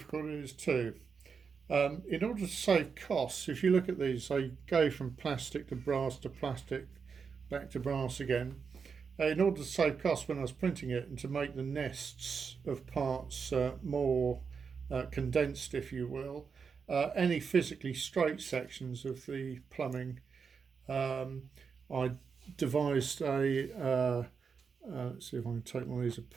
it is too. In order to save costs, if you look at these, they go from plastic to plastic, back to brass again. In order to save costs when I was printing it and to make the nests of parts more condensed, if you will, any physically straight sections of the plumbing, I devised a, let's see if I can take one of these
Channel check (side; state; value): left; quieter; 5.8 dB